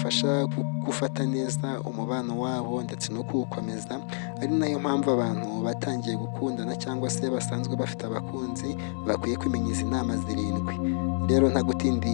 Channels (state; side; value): silent; right; digital silence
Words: gufata neza umubano wabo ndetse no kuwukomeza. Ari nayo mpamvu abantu batangiye gukundana cyangwa se basanzwe bafite abakunzi bakwiye kumenya izi nama 7. Rero